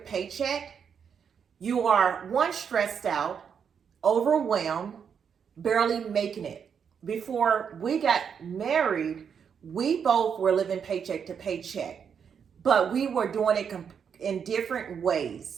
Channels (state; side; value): quieter; left; 7.2 dB